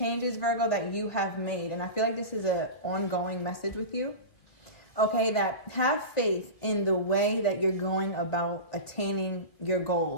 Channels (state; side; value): late; right; 1.9 ms